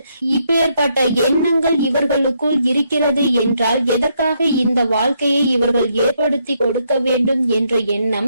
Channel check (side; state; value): both; inverted; correlation -0.75